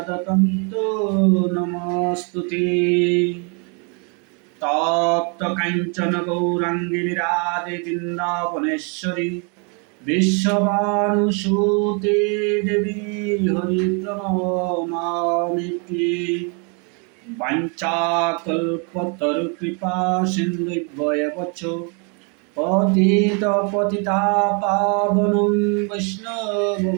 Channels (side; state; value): left; quieter; 36.1 dB